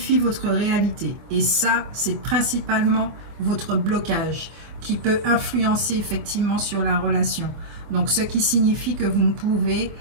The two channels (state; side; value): late; left; 24 ms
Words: votre réalité. Et ça, c'est principalement votre blocage qui peut influencer effectivement sur la relation. Donc, ce qui signifie que vous ne pouvez